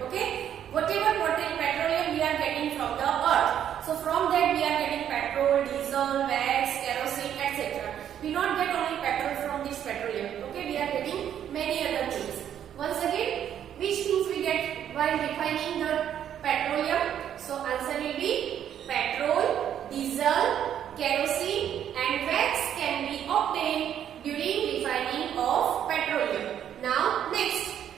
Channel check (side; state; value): left; quieter; 9.8 dB